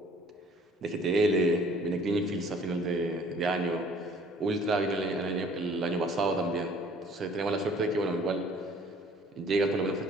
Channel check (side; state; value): both; normal; correlation 0.54